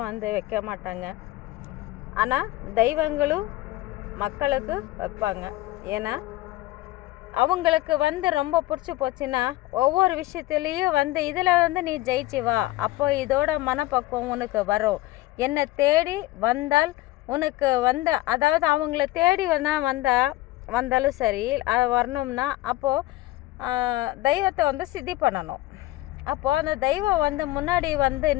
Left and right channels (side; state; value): right; quieter; 17.7 dB